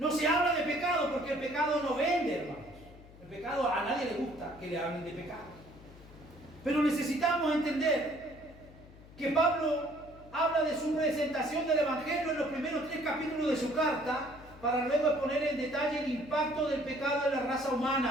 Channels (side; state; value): left; noise; hum, 21 dB below the sound